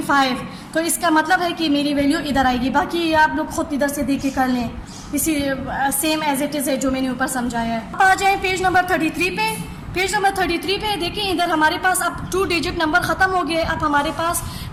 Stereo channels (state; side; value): identical; both; correlation 1.00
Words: तो इसका मतलब है कि मेरी वैल्यू इधर आएगी। बाकी आप लोग खुद इधर से देख के कर लें, इसी सेम एज इट इज़ है जो मैंने ऊपर समझाया है। अब आ जाए पेज नंबर 33 पे। पेज नंबर 33 पे देखिए, इधर हमारे पास अब 2 डिजिट नंबर ख़त्म हो गए, अब हमारे पास